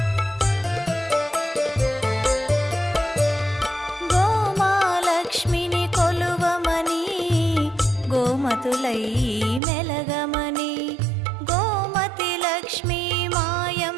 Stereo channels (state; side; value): drops out; left; at 9.6 s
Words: గోమాలక్ష్మిని కొలువమని గోమతులై మెలగమని గోమతి లక్ష్మీ